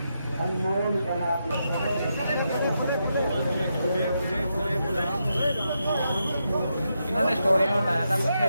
इन्होंने स्टोरी में बताया था कुछ,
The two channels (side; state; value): both; inverted; correlation -0.84